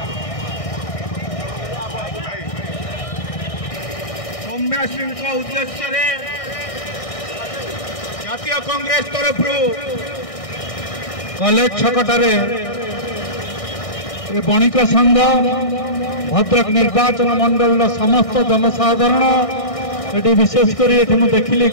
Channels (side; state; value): right; late; 1.6 ms